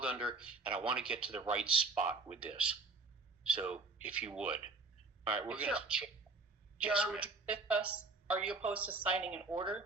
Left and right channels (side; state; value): left; quieter; 3.7 dB